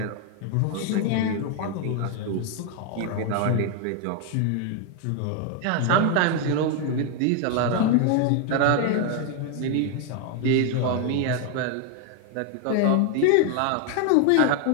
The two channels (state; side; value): different; both; correlation 0.00